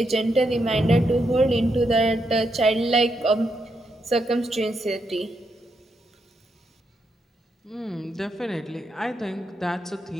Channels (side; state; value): both; normal; correlation 0.81